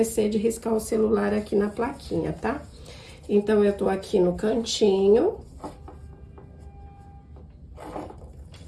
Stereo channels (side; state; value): both; identical; correlation 1.00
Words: de riscar o celular aqui na plaquinha, tá? Então, eu tô aqui no cantinho,